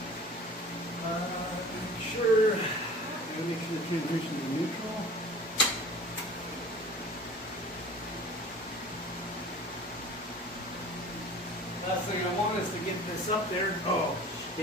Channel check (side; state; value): both; normal; correlation 0.42